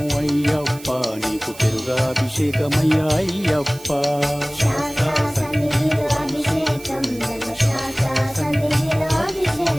అయ్యప్ప, నీకు పెరుగాభిషేకమయ్యా అయ్యప్ప. శాస్త్ర సన్నిధిలో అభిషేకం, ధర్మశాస్త్ర సన్నిధిలో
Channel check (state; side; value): noise; right; hiss, 18 dB below the sound